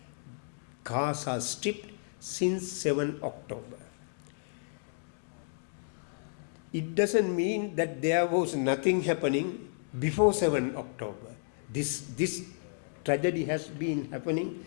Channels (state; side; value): silent; right; digital silence